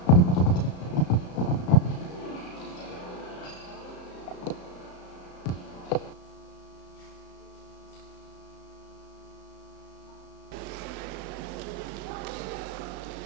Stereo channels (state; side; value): late; right; 34 ms